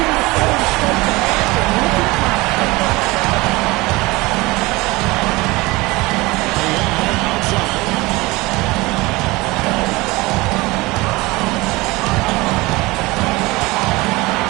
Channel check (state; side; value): quieter; left; 22.2 dB